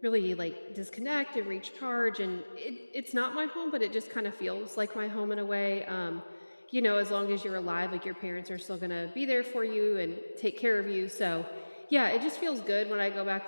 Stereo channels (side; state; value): both; inverted; correlation -1.00